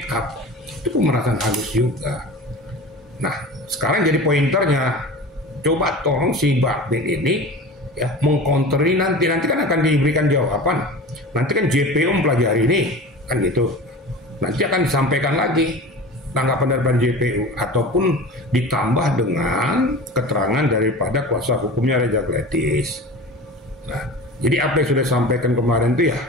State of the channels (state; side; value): normal; both; correlation 0.34